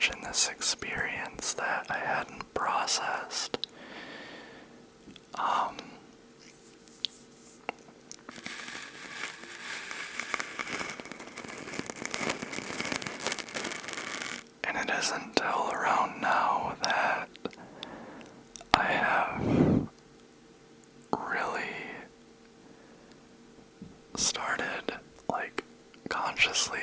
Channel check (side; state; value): both; identical; correlation 1.00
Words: in this experience that I hadn't processed. And it isn't until around now that I have really started consciously